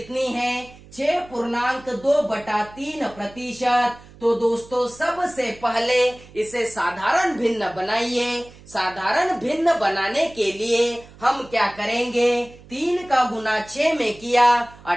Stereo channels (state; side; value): noise; right; hum, 22 dB below the sound